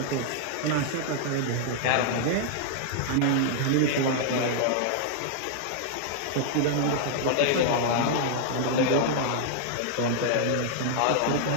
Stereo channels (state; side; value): different; both; correlation -0.01